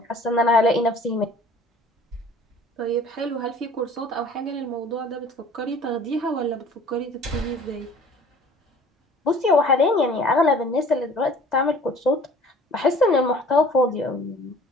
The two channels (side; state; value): both; normal; correlation 0.50